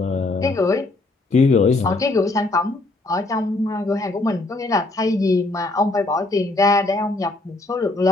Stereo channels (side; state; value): right; quieter; 3.0 dB